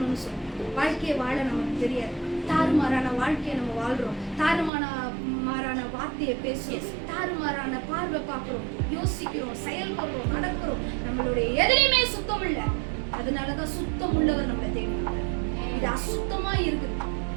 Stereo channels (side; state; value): left; drops out; at 4.7 s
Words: சொல்றோம். வாழ்க்கையை வாழ நமக்கு தெரியாது. தாறுமாறான வாழ்க்கையை நம்ம வாழ்றோம். தாறுமாறான வார்த்தையை பேசுறோம். தாறுமாறான பார்வை பார்க்கிறோம், யோசிக்கிறோம், செயல்படுறோம், நடக்கிறோம். நம்மளுடைய எதிலையுமே சுத்தம் இல்லை. அதனாலதான் சுத்தம் உள்ளவர் நம்மளை தேடினாங்க. இது அசுத்தமா இருக்குது,